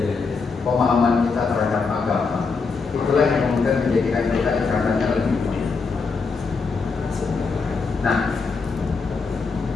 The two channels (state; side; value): quieter; right; 4.7 dB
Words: Pemahaman kita terhadap agama itulah yang kemudian menjadikan kita ibaratnya lebih baik. Nah,